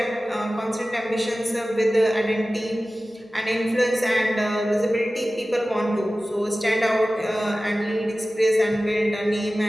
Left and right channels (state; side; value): normal; both; correlation 0.96